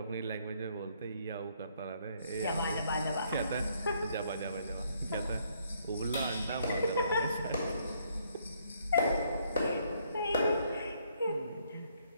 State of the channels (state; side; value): inverted; both; correlation -0.69